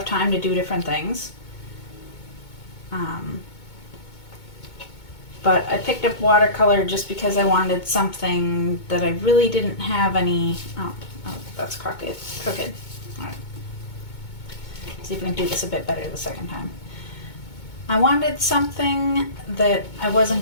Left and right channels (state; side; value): late; right; 2.2 ms